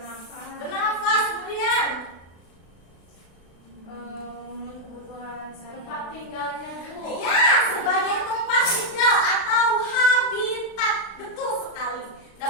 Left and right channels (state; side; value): late; right; 36 ms